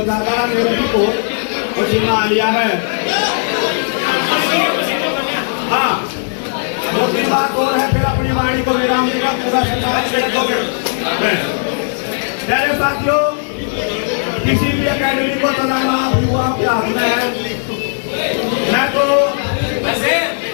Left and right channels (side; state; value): right; silent; digital silence